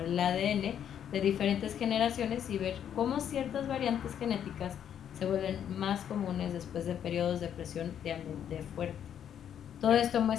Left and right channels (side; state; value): right; quieter; 9.3 dB